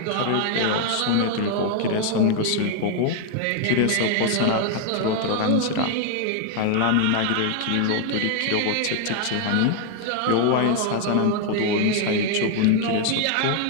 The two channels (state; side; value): different; both; correlation 0.00